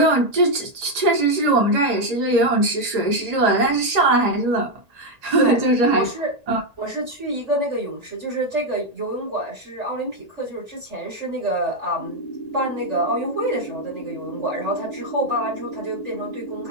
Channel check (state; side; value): late; left; 1.8 ms